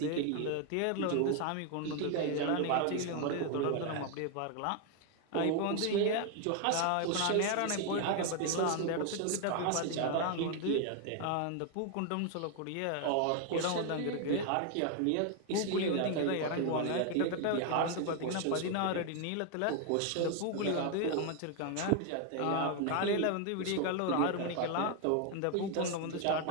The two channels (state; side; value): different; both; correlation 0.01